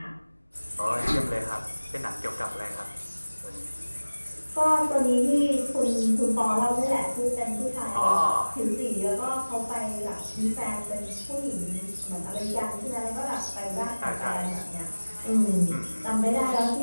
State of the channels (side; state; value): both; inverted; correlation -1.00